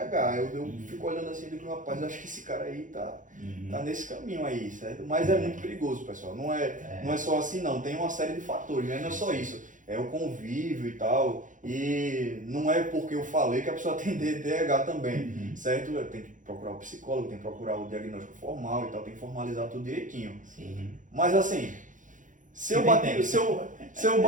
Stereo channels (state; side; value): late; left; 0.37 ms